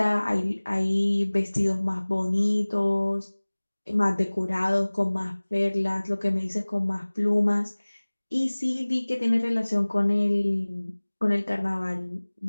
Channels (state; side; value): inverted; both; correlation -1.00